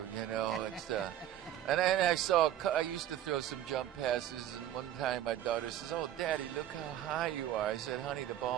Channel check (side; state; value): left; quieter; 11.6 dB